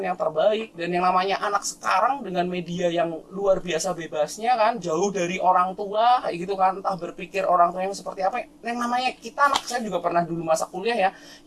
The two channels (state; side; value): identical; both; correlation 1.00